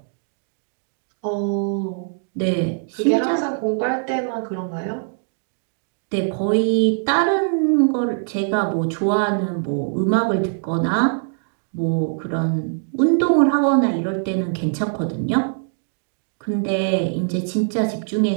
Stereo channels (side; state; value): left; silent; digital silence